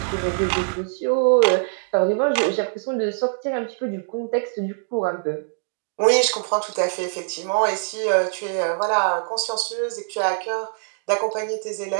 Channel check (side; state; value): left; silent; digital silence